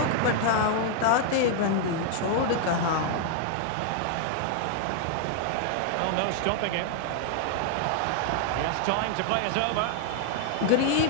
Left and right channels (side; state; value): both; different; correlation 0.00